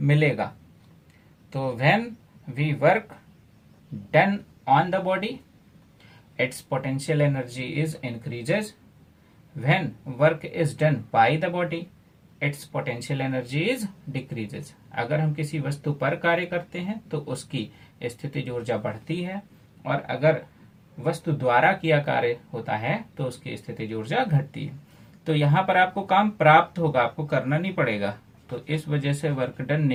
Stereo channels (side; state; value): both; identical; correlation 1.00